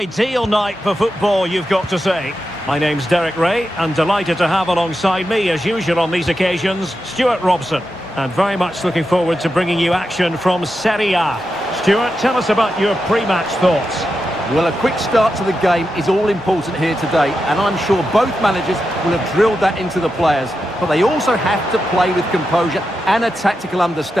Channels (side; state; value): both; normal; correlation 0.88